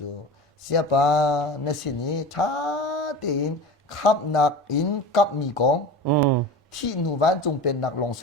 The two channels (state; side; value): normal; both; correlation 0.32